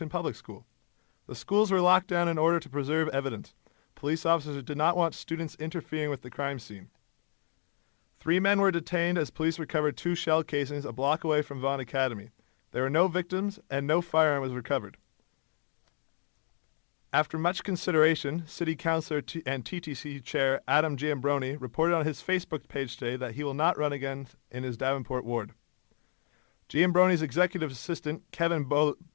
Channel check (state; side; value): silent; right; digital silence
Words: Public School. The schools were locked down in order to preserve evidence. Police officers did not want students interfering with the crime scene. 3 men were detained as police recovered 2 shell casings a block away from Vaughan Academy. There were no victims and no firearm was recovered. After much consideration, City Councillor and TTC Chair Adam Giambroni reported on his Facebook page today that he will not run again in his Davenport ward. Giambroni's executive assistant, Kevin